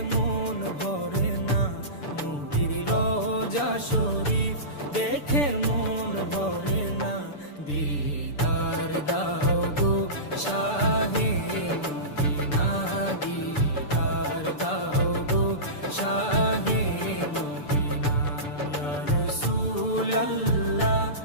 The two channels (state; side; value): late; right; 6.9 ms